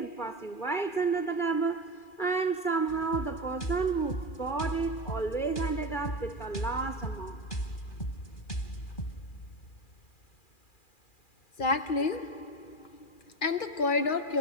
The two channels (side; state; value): right; late; 2.4 ms